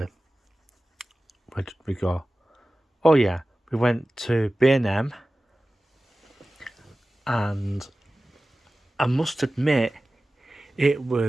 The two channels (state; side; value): normal; both; correlation 0.96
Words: did we go? Oh yeah, we went to B&M, and I must admit it